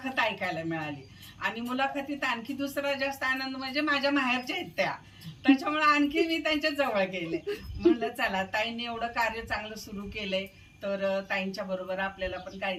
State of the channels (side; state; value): both; identical; correlation 1.00